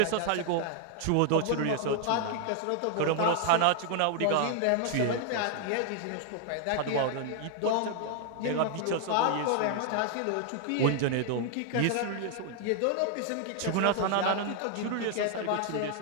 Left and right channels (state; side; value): different; both; correlation 0.00